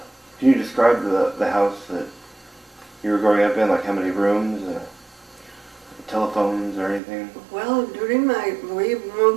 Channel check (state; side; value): drops out; left; at 7.0 s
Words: can you describe the house that you were growing up in, like how many rooms, telephones or anything? Well, we